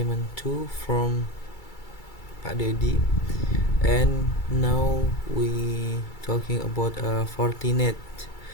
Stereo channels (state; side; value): late; right; 2.3 ms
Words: from Pak Dedi. And now we talking about Fortinet,